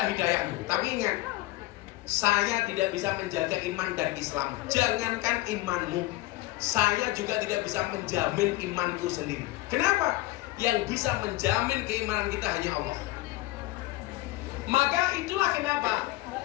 hidayahmu. Tapi ingat, saya tidak bisa menjaga iman dan Islam. Jangankan imanmu, saya juga tidak bisa menjamin imanku sendiri. Kenapa? Yang bisa menjamin keimanan kita hanya Allah. Maka itulah kenapa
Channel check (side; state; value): right; quieter; 18.4 dB